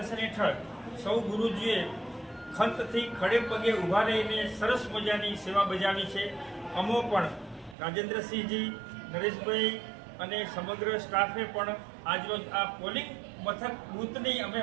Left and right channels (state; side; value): drops out; left; at 7.8 s